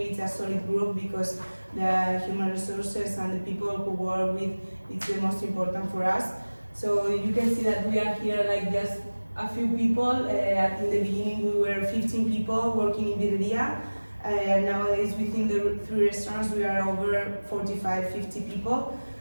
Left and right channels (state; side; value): inverted; both; correlation -1.00